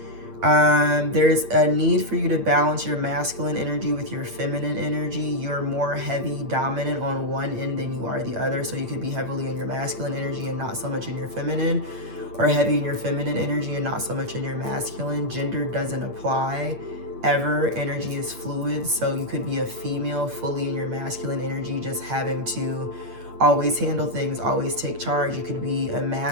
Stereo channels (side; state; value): left; late; 8.7 ms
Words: There's a need for you to balance your masculine energy with your feminine energy. You're more heavy dominant on one end than you are the other. So you could be heavily in your masculine energy and not so much in your feminine, or heavy in your feminine energy and not so much in your masculine. Gender doesn't apply ever. Energy is fluid. So you could be a female fully in your masculine energy, just having to always handle things, always take charge. You could be a